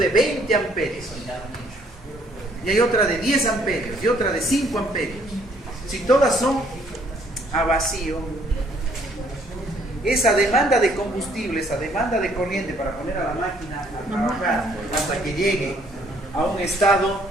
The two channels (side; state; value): both; normal; correlation 0.64